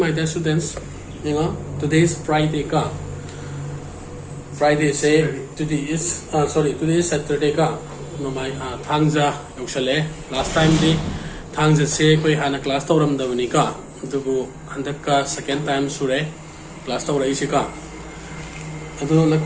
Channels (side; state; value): both; identical; correlation 1.00